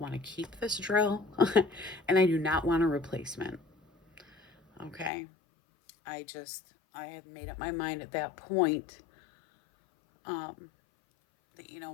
to keep this drill and I do not want a replacement. Okay. I had made up my mind at that point that,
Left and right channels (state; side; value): drops out; right; at 5.1 s